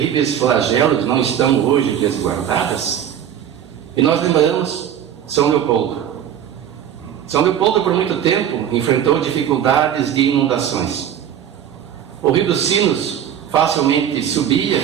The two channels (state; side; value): quieter; left; 9.7 dB